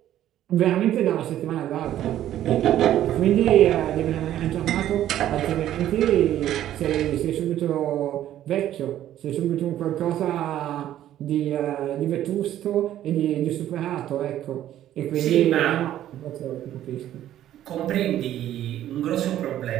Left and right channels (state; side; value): quieter; left; 12.2 dB